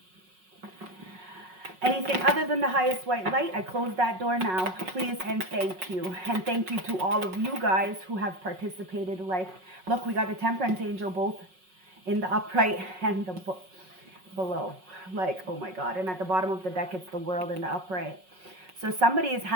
Anything other than the highest white light, I close that door now. Please and thank you. And thank you to all of you guys who have participated. Like, look, we got the Temperance Angel both in the upright and the below. Like, oh my God. And at the bottom of the deck, it's the World in the upright. So somebody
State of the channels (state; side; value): late; left; 5.4 ms